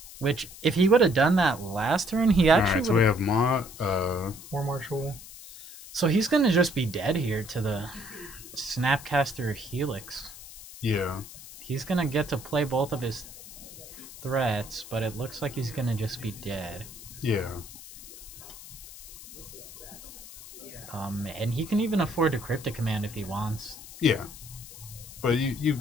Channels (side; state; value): left; noise; hiss, 15 dB below the sound